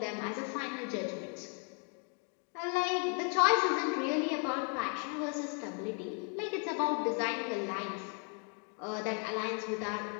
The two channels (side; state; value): right; quieter; 39.9 dB